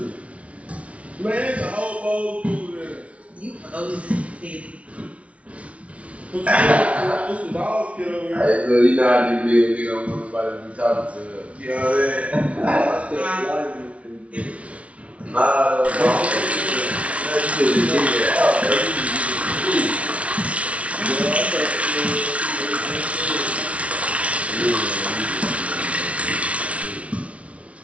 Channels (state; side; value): late; left; 0.063 ms